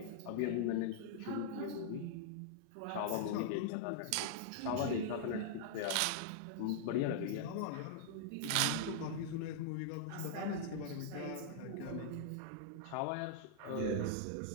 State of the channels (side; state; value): both; different; correlation -0.01